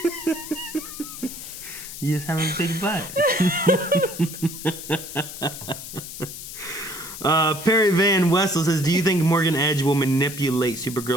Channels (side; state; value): left; noise; hiss, 11 dB below the sound